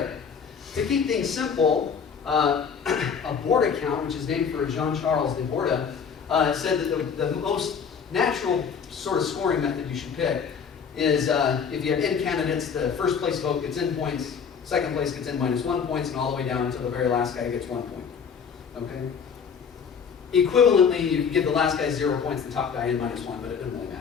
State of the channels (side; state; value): right; quieter; 6.6 dB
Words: To keep things simple, a board account, which is named for Jean-Charles de Borda, said that the most natural sort of scoring method you should pick is if you have n candidates, the first place vote gets n points, second place gets n minus 1 points, and all the way down until the very last guy gets 1 point. Okay? Equivalently, you can give the last guy 0 points, the top guy n minus 1, but it doesn't really